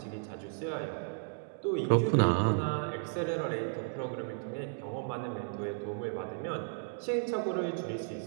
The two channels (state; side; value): silent; left; digital silence